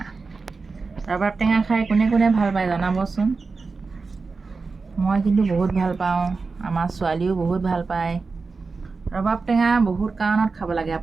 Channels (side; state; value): left; quieter; 4.3 dB